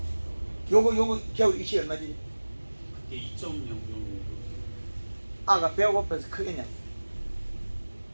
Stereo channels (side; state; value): both; inverted; correlation -1.00